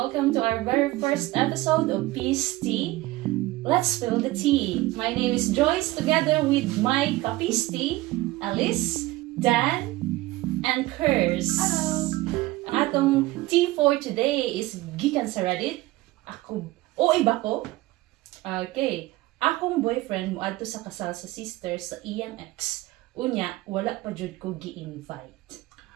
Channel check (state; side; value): quieter; left; 18.5 dB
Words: welcome to our very first episode of Peace Tea. Let's spill the tea. My name is Joyce together with my Kapis Tea, Alice, Dan, and Kurs. Hello! Ang atong tea for today is gikan sa Reddit. Iba ko. Okay. Akong boyfriend moadto sa kasal sa sister sa iyang ex. Unya, wala pa jud ko gi-invite.